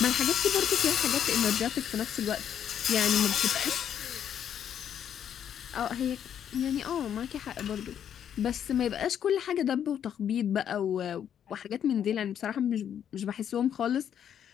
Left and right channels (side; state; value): right; quieter; 9.2 dB